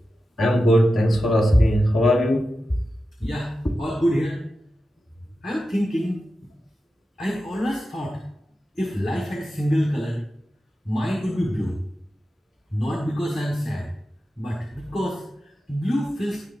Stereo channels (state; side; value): normal; both; correlation 0.92